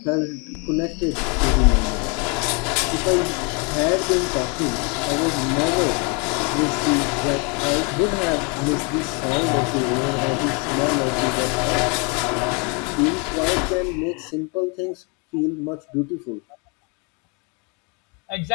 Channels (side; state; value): right; quieter; 32.7 dB